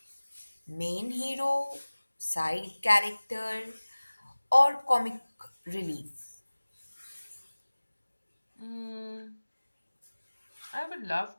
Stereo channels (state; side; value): inverted; both; correlation -1.00